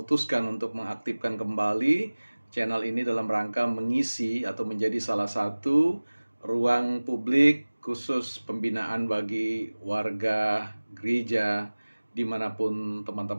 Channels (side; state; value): both; inverted; correlation -1.00